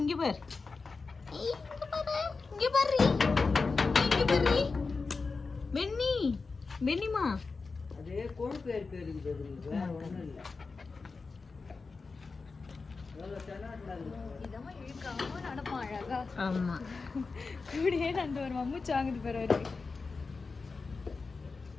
இங்க பாரு பெண்ணி. பெண்ணிமா அதே கொழுப்பு இருக்குது. ஒண்ணும் இல்லை. ஆமா கூடயே நண்டு ஒரு மம்முச்சு வாங்குது பேர் அவரு.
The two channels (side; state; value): right; quieter; 4.3 dB